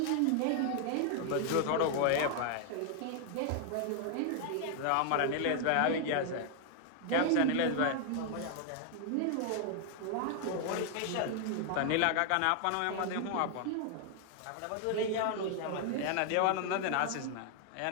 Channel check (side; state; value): both; different; correlation 0.00